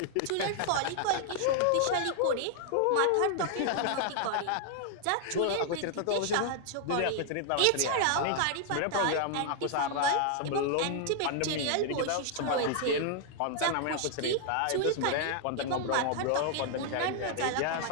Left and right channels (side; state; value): both; different; correlation 0.00